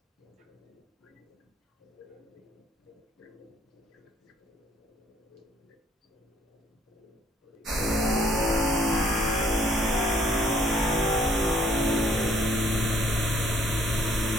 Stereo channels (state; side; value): normal; both; correlation 0.63